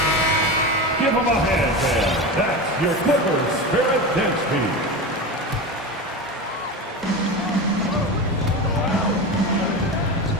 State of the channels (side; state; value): both; normal; correlation 0.24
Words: Give them a hand, fan. That's your Clippers Spirit dance team.